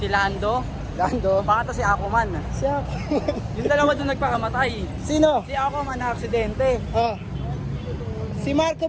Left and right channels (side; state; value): both; identical; correlation 1.00